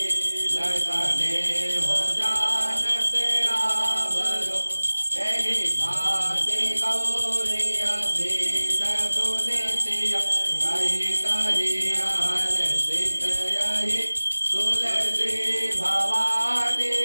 लसने हो जानत रावरो एहि भाति गौरी अभीत सुनितिया कही कही हर सित यही तुलसी भवानी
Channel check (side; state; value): both; inverted; correlation -1.00